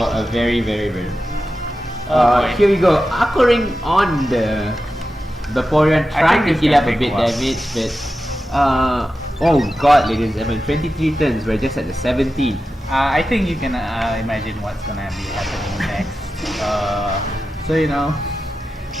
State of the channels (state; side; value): normal; both; correlation 0.92